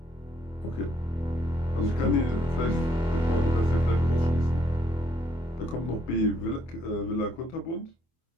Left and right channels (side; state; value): right; late; 24 ms